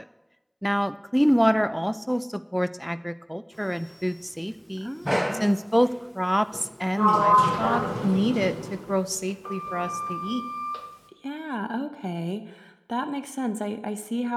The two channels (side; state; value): both; identical; correlation 1.00